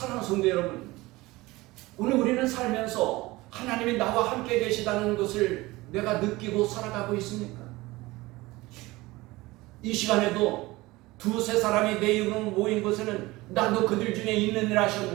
성도 여러분, 오늘 우리는 살면서 하나님이 나와 함께 계시다는 것을 내가 느끼고 살아가고 있습니까? 이 시간에도 두세 사람이 내 이름으로 모인 곳에는 나도 그들 중에 있느니라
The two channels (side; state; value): left; quieter; 20.4 dB